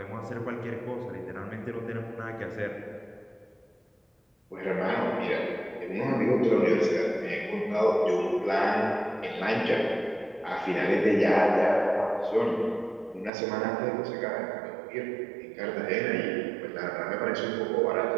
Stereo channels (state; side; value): drops out; left; at 13.3 s